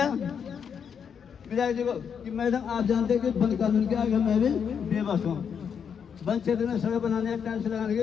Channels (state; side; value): quieter; right; 7.2 dB